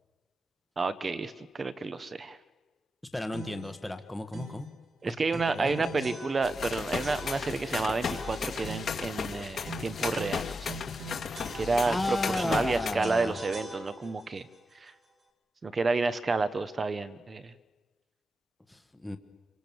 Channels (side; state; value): both; normal; correlation 0.88